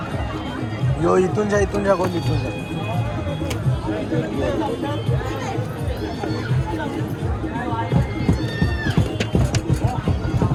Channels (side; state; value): both; identical; correlation 1.00